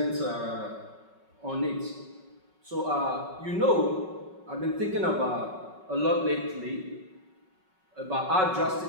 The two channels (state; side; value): late; left; 5.4 ms